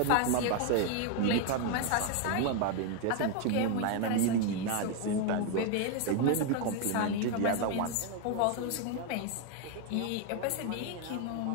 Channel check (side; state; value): both; different; correlation 0.01